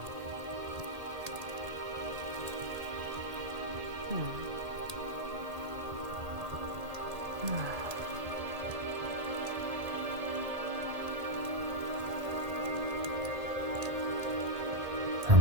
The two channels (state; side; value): late; left; 1.8 ms